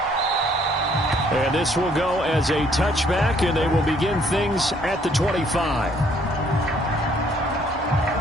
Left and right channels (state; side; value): normal; both; correlation 0.64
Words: And this will go as a touchback, and they will begin things at the 25.